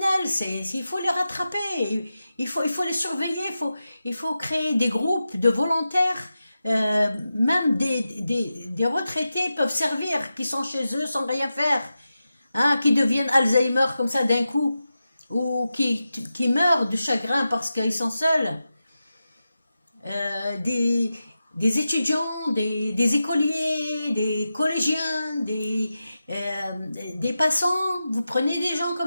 il faut les rattraper, il faut les surveiller, il faut créer des groupes de volontaires. Même des retraités peuvent servir, qui sont chez eux sans rien faire, hein, qui deviennent Alzheimer comme ça d'un coup, ou qui meurent de chagrin parce qu'ils sont seuls. des étudiants, des écoliers, des collégiens, des passants. Vous prenez des gens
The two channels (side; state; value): both; inverted; correlation -0.92